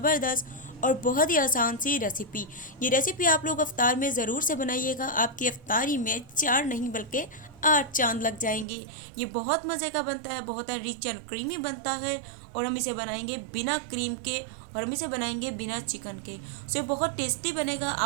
और बहुत ही आसान सी रेसिपी। ये रेसिपी आप लोग अफ्तार में ज़रूर से बनाइएगा। आपकी अफ्तारी में 4 नहीं बल्कि 8 चांद लग जाएंगे। ये बहुत मज़े का बनता है, बहुत रिच एंड क्रीमी बनता है। और हम इसे बनाएंगे बिना क्रीम के और हम इसे बनाएंगे बिना चिकन के। सो ये बहुत टेस्टी बनेगा।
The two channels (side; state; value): left; drops out; at 8.7 s